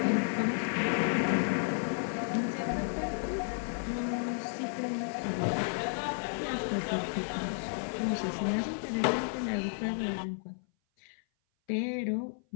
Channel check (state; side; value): silent; right; 56 dB below the other